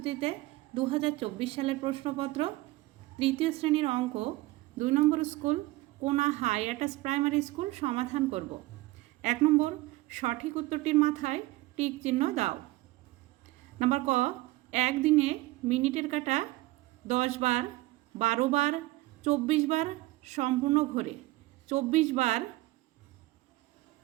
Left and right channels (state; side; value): quieter; left; 19.3 dB